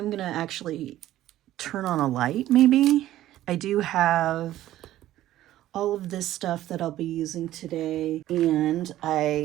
going to actually turn on a light, maybe. I do have all of this stuff that I'll be using today, and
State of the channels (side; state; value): left; quieter; 13.9 dB